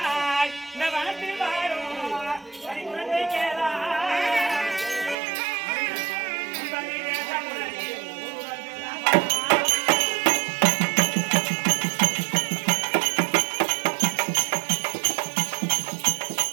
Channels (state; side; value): drops out; left; at 5.2 s